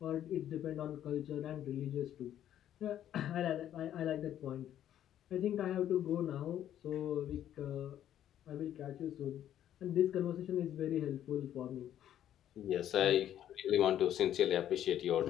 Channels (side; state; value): right; quieter; 11.1 dB